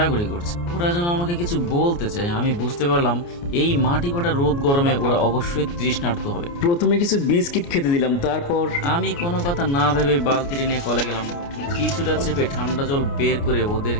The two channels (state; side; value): late; right; 29 ms